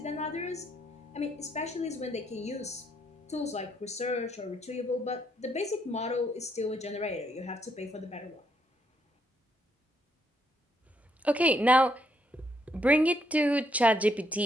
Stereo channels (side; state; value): both; normal; correlation 0.74